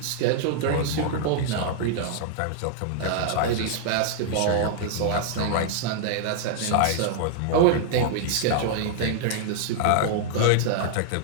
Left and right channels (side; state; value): both; different; correlation -0.01